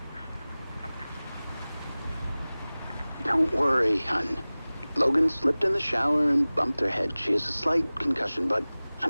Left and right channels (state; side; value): inverted; both; correlation -0.99